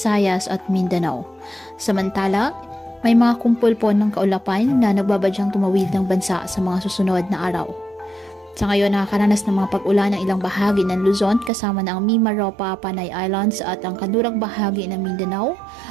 at Mindanao. Samantala, may mga kumpul po ng kaulapan na nagbabadyang tumawid ng bansa sa mga susunod na araw. Sa ngayon, nakakaranas ng mga pag-ulan ng ilang bahagi ng Luzon kasama na ang Mimaropa, Panay Islands at ang kanlurang bahagi ng Mindanao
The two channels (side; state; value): left; drops out; at 11.5 s